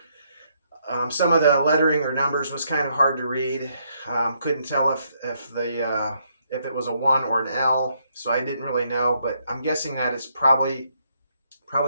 Some of the lettering or numbers was kind of hard to read. Couldn't tell if it was a one or an L, so I didn't really know. But I'm guessing that it's probably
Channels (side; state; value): both; inverted; correlation -0.73